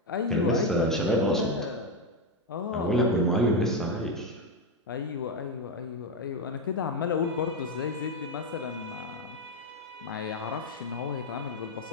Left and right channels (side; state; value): both; normal; correlation 0.09